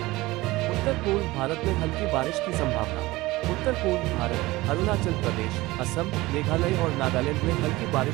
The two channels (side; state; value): left; quieter; 19.7 dB